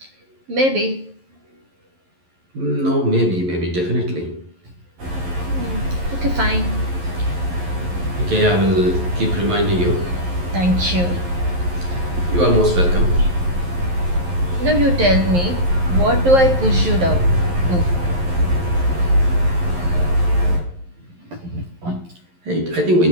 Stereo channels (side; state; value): left; late; 11 ms